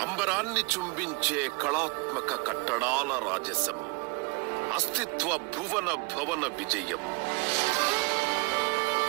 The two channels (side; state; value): left; quieter; 28.7 dB